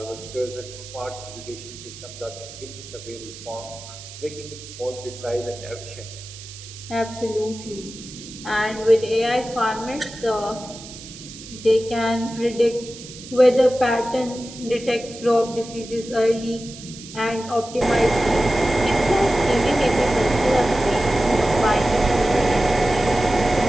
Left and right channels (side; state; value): right; noise; hiss, 15 dB below the sound